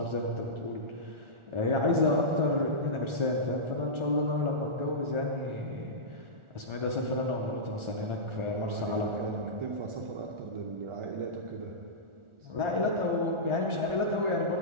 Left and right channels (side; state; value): left; late; 1.4 ms